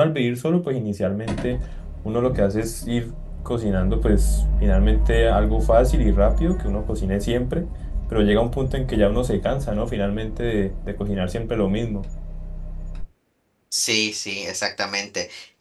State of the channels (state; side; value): identical; both; correlation 1.00